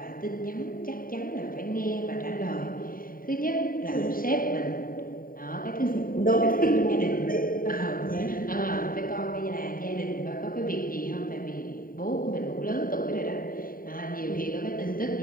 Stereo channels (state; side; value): late; right; 0.41 ms